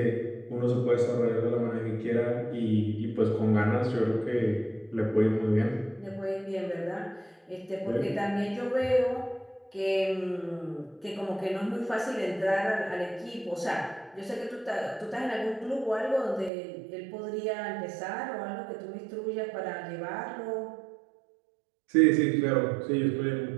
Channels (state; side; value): drops out; left; at 16.5 s